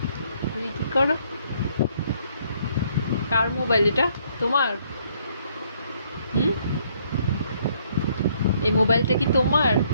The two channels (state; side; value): inverted; both; correlation -0.67